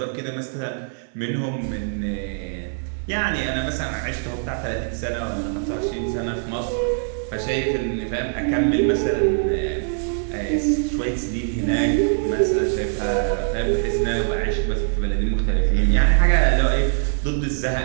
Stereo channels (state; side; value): silent; left; 56 dB below the other